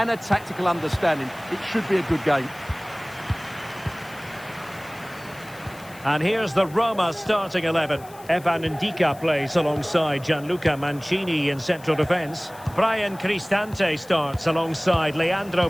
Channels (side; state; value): left; noise; hiss, 22 dB below the sound